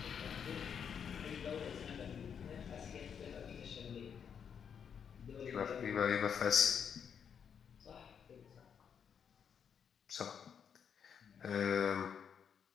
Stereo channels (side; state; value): right; quieter; 7.4 dB